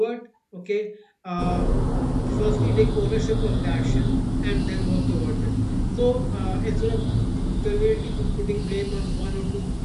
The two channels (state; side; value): identical; both; correlation 1.00